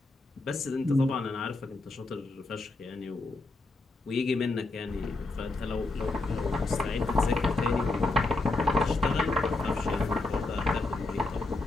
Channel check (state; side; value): quieter; right; 3.1 dB